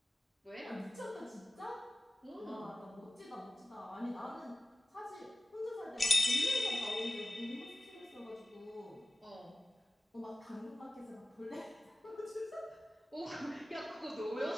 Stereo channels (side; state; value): both; normal; correlation 0.97